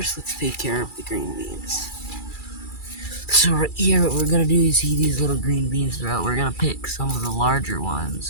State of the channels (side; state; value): right; late; 2.3 ms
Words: let's take care of the green beans. So right here, what we're gonna do is see these little green beans throughout. We're gonna pick some of the larger